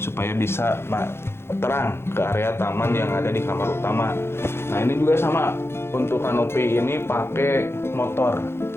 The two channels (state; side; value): late; right; 0.12 ms